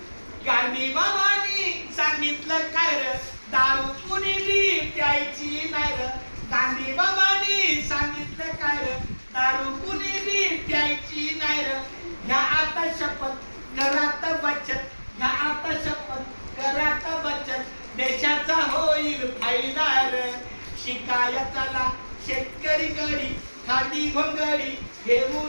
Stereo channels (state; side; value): inverted; both; correlation -1.00